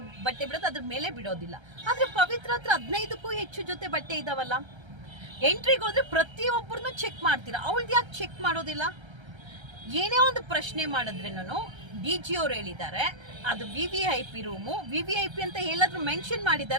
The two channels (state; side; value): late; left; 1.3 ms